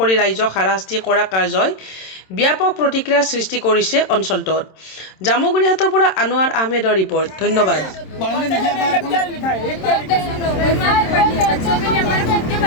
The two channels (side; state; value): right; late; 26 ms